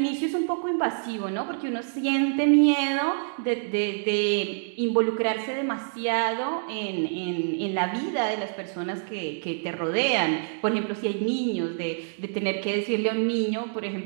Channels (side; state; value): left; silent; digital silence